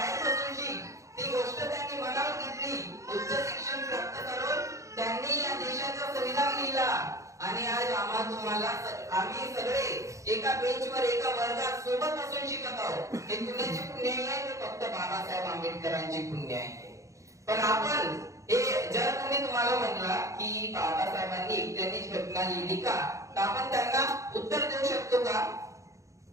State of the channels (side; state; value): left; late; 0.15 ms